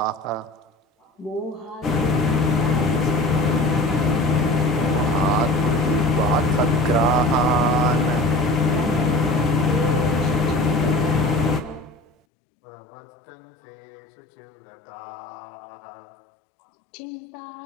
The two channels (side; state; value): right; drops out; at 12.2 s